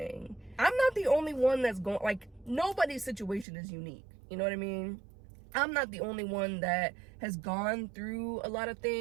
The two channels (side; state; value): left; drops out; at 3.5 s